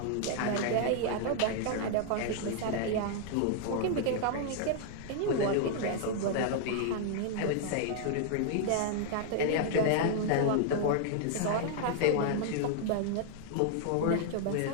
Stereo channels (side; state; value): both; different; correlation 0.00